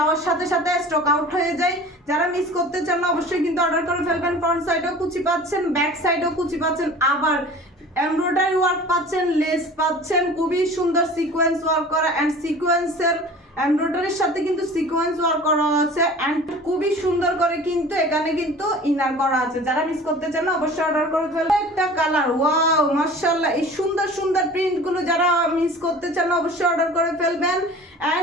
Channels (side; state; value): both; normal; correlation 0.42